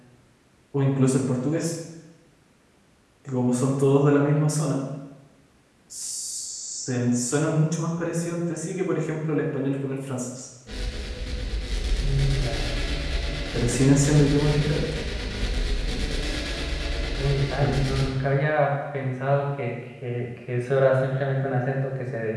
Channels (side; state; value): both; identical; correlation 1.00